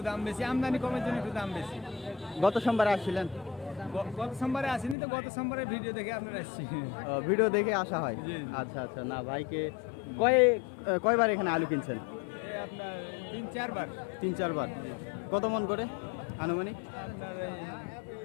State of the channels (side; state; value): right; drops out; at 5.0 s